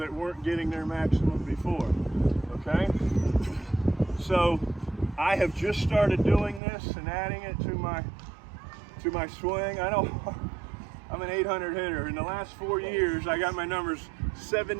weren't getting their maximum before, okay? So I have just started doing this and adding it to my swing. I know I'm an 800 hitter. In the last 4 years, I got my numbers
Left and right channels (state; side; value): drops out; left; at 6.6 s